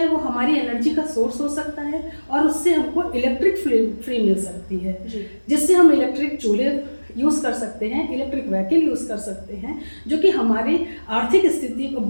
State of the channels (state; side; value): inverted; both; correlation -1.00